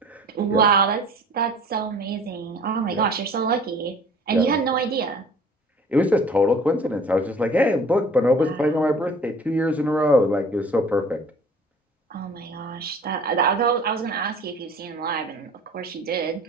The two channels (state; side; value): normal; both; correlation 0.48